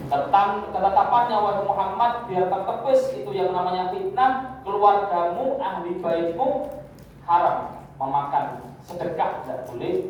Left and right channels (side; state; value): both; identical; correlation 1.00